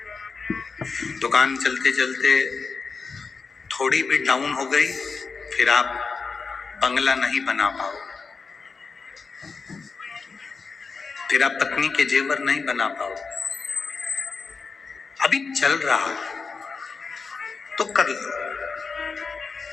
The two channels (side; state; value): right; quieter; 4.8 dB